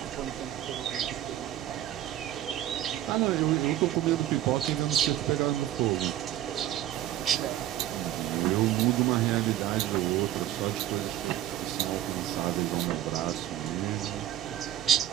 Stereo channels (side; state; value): left; quieter; 12.7 dB